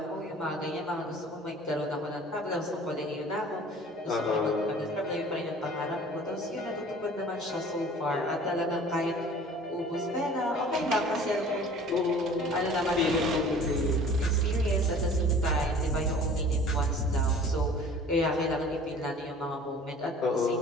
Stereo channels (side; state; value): both; normal; correlation 0.47